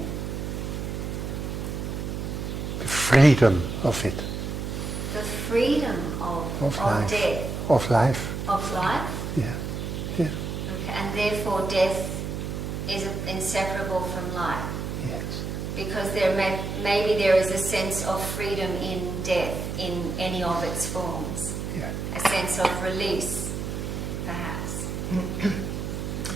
The freedom of it. The freedom of life. death. Of life. Of life? Yeah. Yeah. Okay. And therefore death is inseparable from life. Yes. Because maybe there is a sense of freedom in death in any of its forms. Yeah. A sense of release, perhaps.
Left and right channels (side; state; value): right; noise; hum, 4 dB below the sound